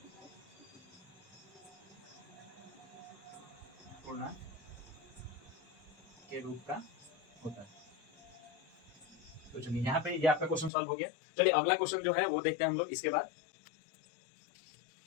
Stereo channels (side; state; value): right; drops out; at 10.7 s